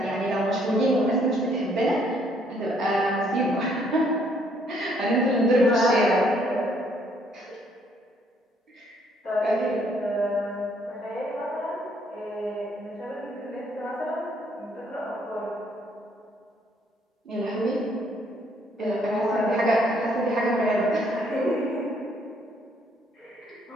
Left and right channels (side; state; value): both; normal; correlation 0.67